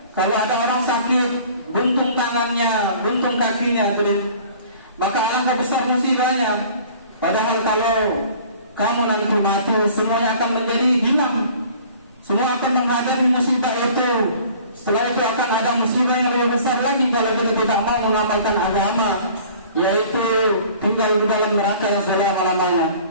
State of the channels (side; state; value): both; inverted; correlation -0.49